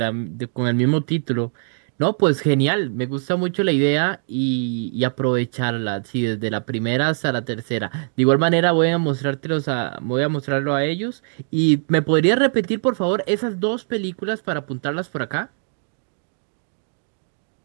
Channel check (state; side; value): silent; left; digital silence